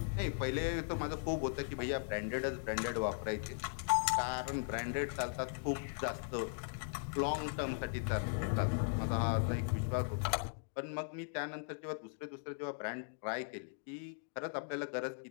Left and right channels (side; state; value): right; silent; digital silence